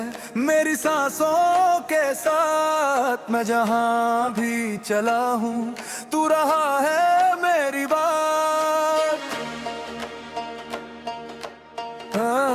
मेरी सांसों के साथ, मैं जहां भी चला हूँ तू रहा है मेरी बात।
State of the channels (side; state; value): both; identical; correlation 1.00